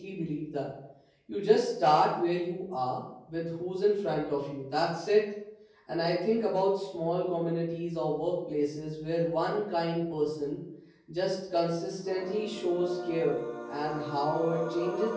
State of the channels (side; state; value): both; identical; correlation 1.00